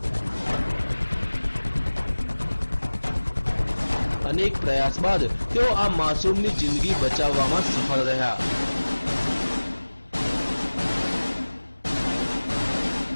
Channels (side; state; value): both; inverted; correlation -1.00